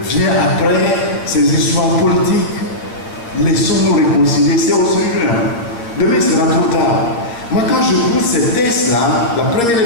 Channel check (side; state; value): right; late; 8.5 ms